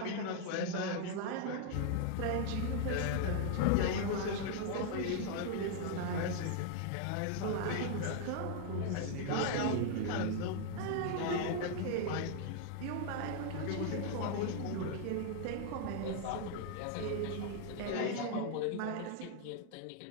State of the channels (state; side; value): different; both; correlation 0.00